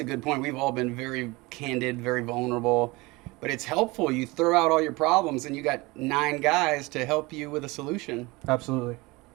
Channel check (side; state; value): left; quieter; 23.4 dB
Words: a good point. We've all been very candid, very vulnerable, but it's helpful. You throw out all your problems, and you got 9 guys to help you with a solution. Absolutely.